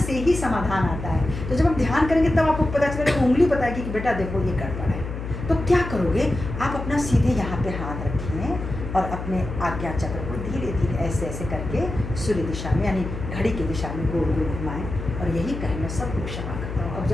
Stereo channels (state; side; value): noise; left; hum, 7 dB below the sound